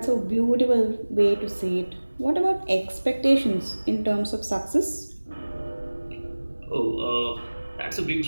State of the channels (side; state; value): both; inverted; correlation -1.00